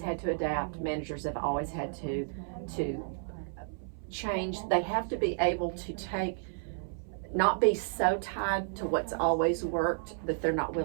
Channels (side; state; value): left; silent; 56 dB below the other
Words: to adapt. Managers have always had to change. They have to be able to not be so tied to what's always worked that they're not